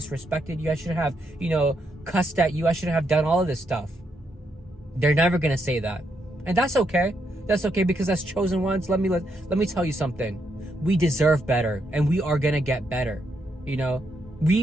you. I shouldn't have, cussed at you. I shouldn't have done all of this stuff. They're never going to say that. And that's okay. That's okay, because as chosen ones, let me tell you something. We deserve better, and we are going to get better.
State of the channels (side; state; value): both; normal; correlation 0.78